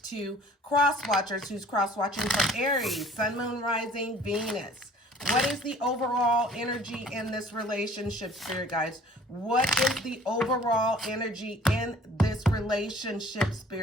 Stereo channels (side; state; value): both; normal; correlation 0.52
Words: to Cross Watchers who's cross-watching for Aries, Sun, Moon, Rising, Venus. What is the overall energy in this relationship, Spirit Guides? What is the overall energy in this relationship,